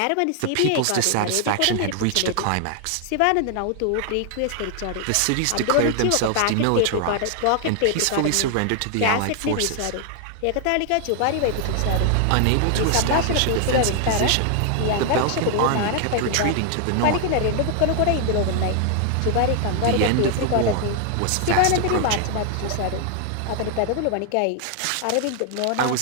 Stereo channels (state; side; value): different; both; correlation 0.00